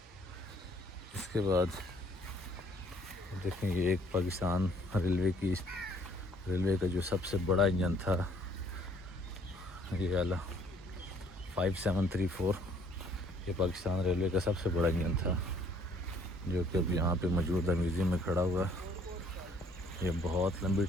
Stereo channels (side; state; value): both; normal; correlation 0.61